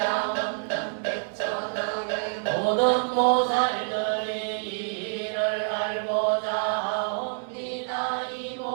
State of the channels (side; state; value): left; silent; digital silence